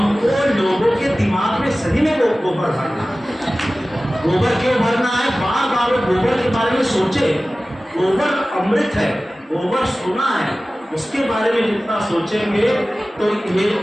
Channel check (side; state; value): both; normal; correlation 0.97